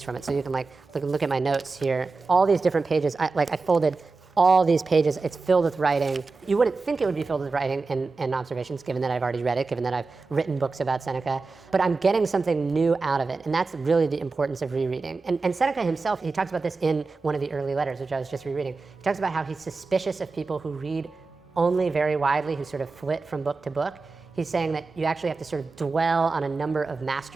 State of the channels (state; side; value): quieter; left; 4.0 dB